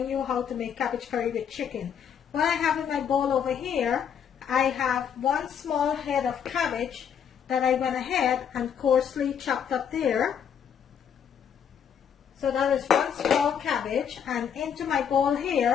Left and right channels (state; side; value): quieter; right; 8.1 dB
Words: you how to make cabbage curry with chicken. What I have in my bowl over here, I have one small head of cabbage that I went ahead and coarsely chopped up there. So that is one small cabbage, and into my bowl